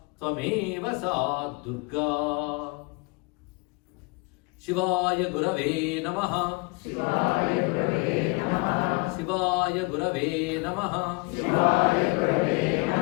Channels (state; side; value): quieter; right; 28.4 dB